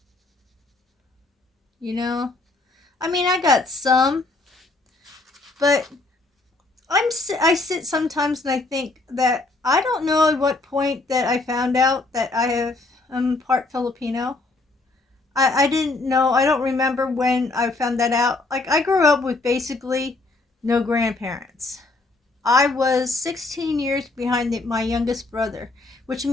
You know, I mean, I got some, but I sit sometimes and I think that I don't know at what point that I found out that I'm part Filipino. I didn't know. I don't remember when I found that out. Like, I grew up with basically no grandparents. I was 16 years behind my youngest brother, which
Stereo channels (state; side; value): quieter; right; 3.3 dB